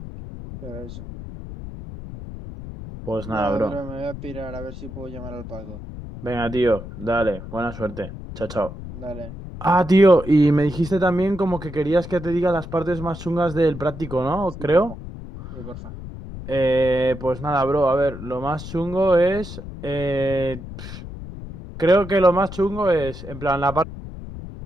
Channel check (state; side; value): noise; left; rumble, 11 dB below the sound